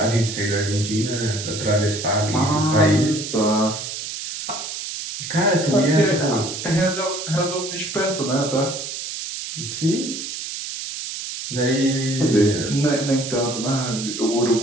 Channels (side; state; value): right; noise; hiss, 7 dB below the sound